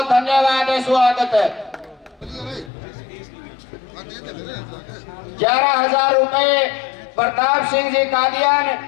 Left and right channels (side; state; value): right; drops out; at 2.7 s